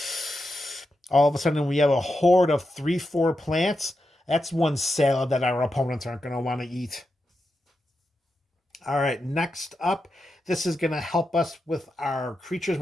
All of a sudden, we have a horde of 3/4 plants. That's one salad that our opponents aren't going to want to eat. All right, next up, this is going to help us with our creatures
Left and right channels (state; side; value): normal; both; correlation 0.88